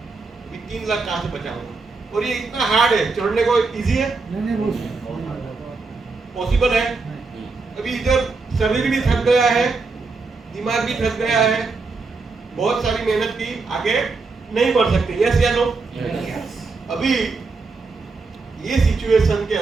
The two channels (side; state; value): left; quieter; 4.1 dB